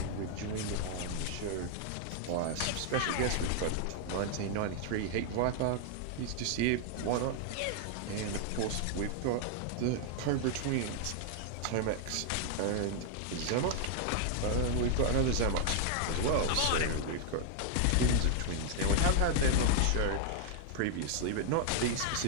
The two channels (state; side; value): different; both; correlation 0.00